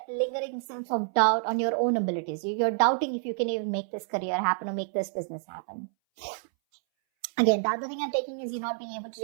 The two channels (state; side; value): silent; left; 59 dB below the other